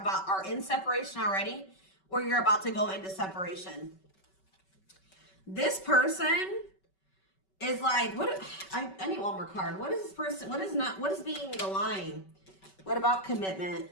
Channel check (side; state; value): right; late; 5.3 ms